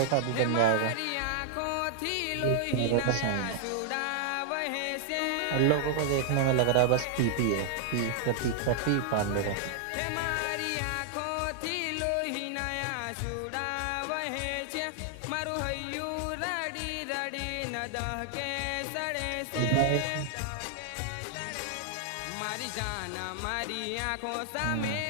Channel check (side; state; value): both; different; correlation -0.01